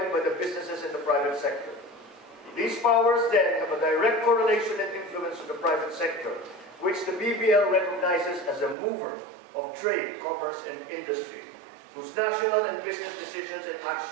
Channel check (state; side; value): drops out; left; at 8.8 s